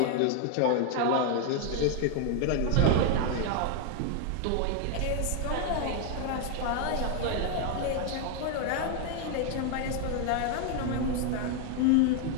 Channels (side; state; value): both; different; correlation 0.00